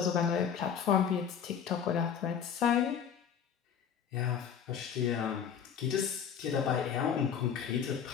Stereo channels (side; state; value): right; quieter; 7.8 dB